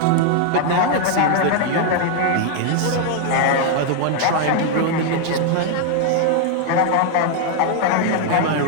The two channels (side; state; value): both; different; correlation 0.00